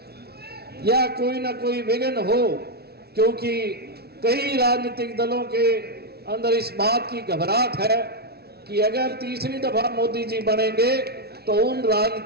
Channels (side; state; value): left; late; 0.46 ms